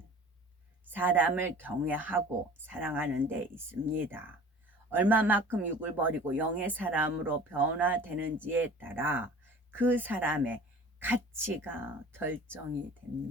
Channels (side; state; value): both; normal; correlation 0.44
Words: 사람을 경외하고 사랑하는 데 있습니다. 얼마만큼 육을 버리고 영의 사람으로 변화되는지에 따라 그 사람의 가치가 결정이